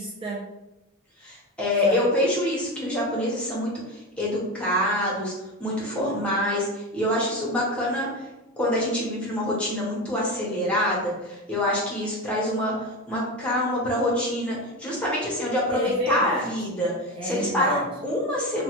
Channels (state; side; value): normal; both; correlation 0.21